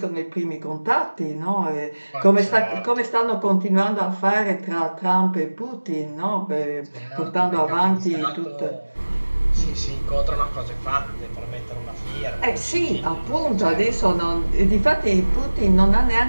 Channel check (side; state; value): both; inverted; correlation -1.00